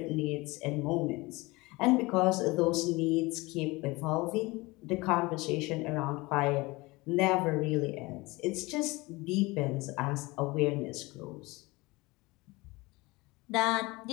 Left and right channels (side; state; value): right; quieter; 22.8 dB